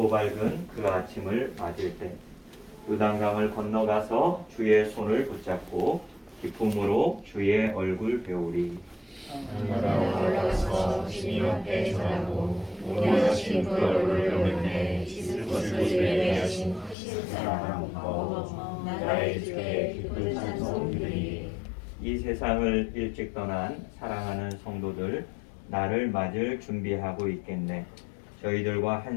밝은 그 아침을 맞을 때 요단강을 건너가서 주의 손을 붙잡고 기쁨으로 주의 얼굴 배우리. 하늘나라 올라가서 주님 앞에 전하고 원하신 그 얼굴을 배우는데 씻을 것을 예배하신 사랑 마음 나의 주께 기쁜 찬송 드리리. 이 세상을 일찍 떠난 사랑하는 성도들 나를 맞을 준비하고 있겠네. 저희들과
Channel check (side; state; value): right; drops out; at 16.9 s